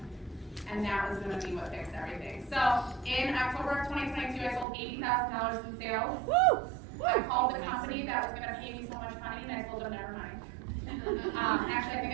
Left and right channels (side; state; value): left; drops out; at 4.7 s